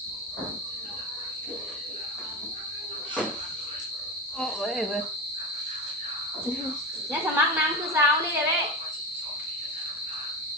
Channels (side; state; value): both; normal; correlation 0.21